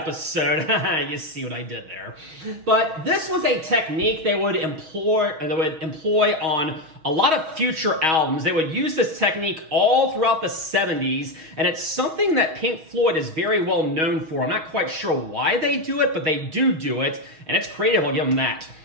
You see what I did there. But this was a technique they would employ on a lot of future albums. They would use this technique all throughout the 70s, and it's something that Pink Floyd is very well known for. I'm not quite sure why they do it, but they do it, and it's creative, I'll give them that.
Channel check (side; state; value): left; late; 6.3 ms